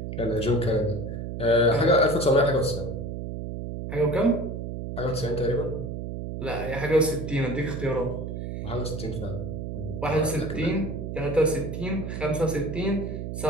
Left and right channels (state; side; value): noise; right; hum, 6 dB below the sound